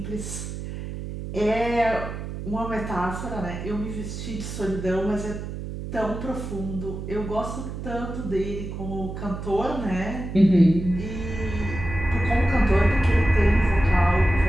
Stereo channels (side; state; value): right; noise; hum, 7 dB below the sound